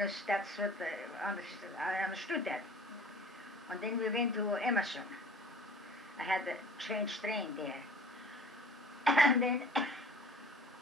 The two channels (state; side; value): normal; both; correlation 0.47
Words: that's what I understood that. And then we went to Emerson. I had to change train there. And then,